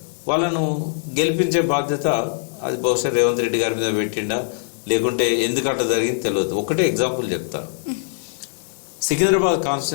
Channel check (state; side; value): silent; right; digital silence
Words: వాళ్ళను గెలిపించే బాధ్యత అది బహుశా రేవంత్ రెడ్డి గారి మీద పెట్టిండా లేకుంటే ఎందుకు అట్లా జరిగింది తెలియదు. ఒకటే ఎగ్జాంపుల్ చెప్తా. సికింద్రాబాద్